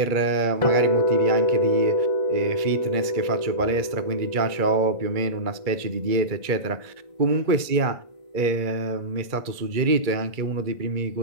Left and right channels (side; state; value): left; late; 2.3 ms